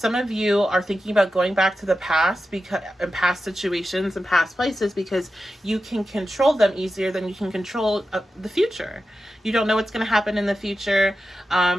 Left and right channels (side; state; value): both; normal; correlation 0.91